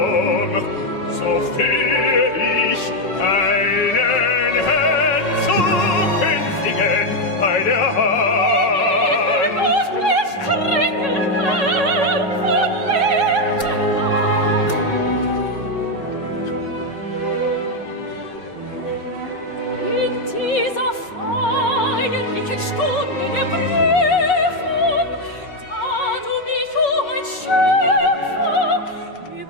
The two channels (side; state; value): right; late; 5.4 ms